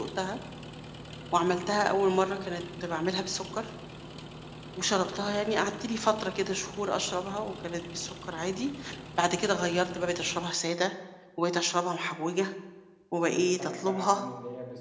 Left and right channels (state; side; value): identical; both; correlation 1.00